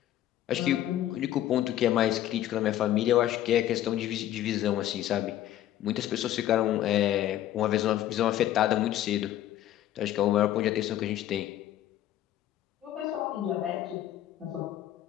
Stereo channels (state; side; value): quieter; right; 12.7 dB